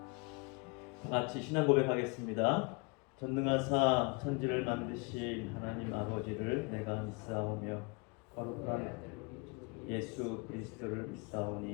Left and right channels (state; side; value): quieter; right; 31.3 dB